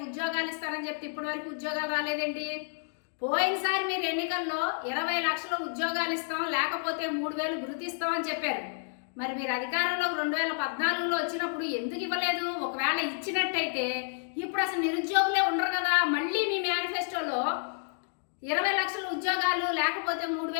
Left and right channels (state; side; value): silent; right; digital silence